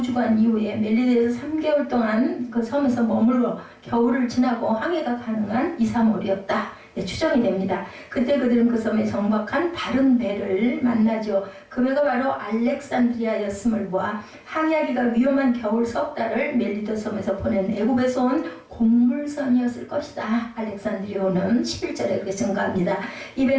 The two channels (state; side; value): identical; both; correlation 1.00